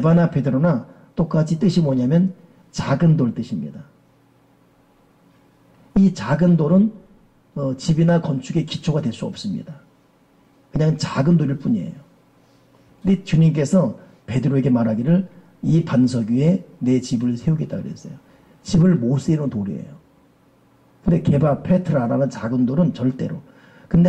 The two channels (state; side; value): identical; both; correlation 1.00